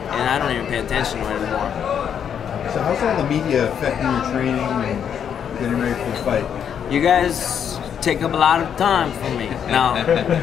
I don't even pay attention to it anymore. So how's all the media affecting your training and getting ready for the fight? You guys take up a lot of time from me. No.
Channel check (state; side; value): quieter; right; 8.3 dB